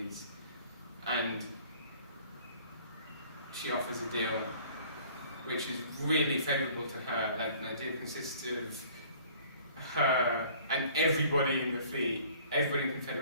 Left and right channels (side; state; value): both; inverted; correlation -0.52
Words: and she offers a deal which is really favourable to her. Like, the deal consists of her and everybody in the fleet, everybody in the